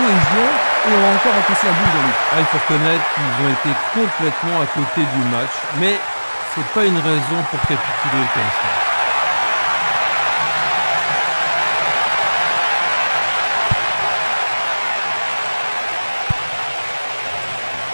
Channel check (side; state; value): both; inverted; correlation -1.00